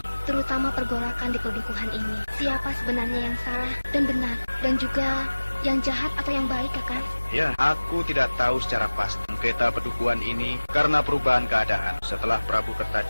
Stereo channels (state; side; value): inverted; both; correlation -1.00